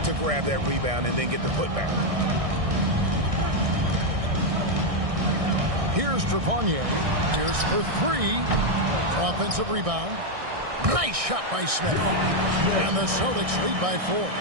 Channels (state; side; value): late; left; 1.6 ms